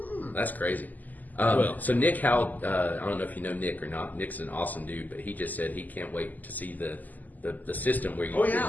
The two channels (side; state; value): right; late; 0.082 ms